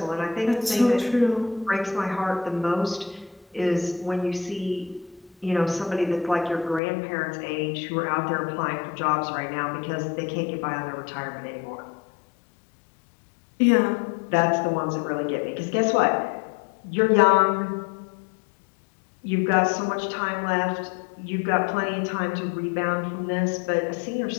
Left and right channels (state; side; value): drops out; right; at 6.8 s